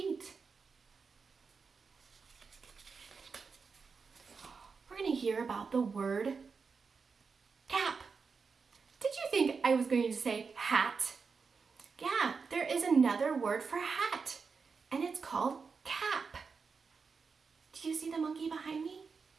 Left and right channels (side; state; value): left; quieter; 5.1 dB